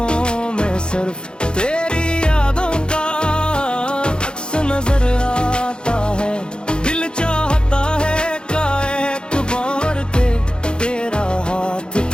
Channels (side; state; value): right; late; 0.050 ms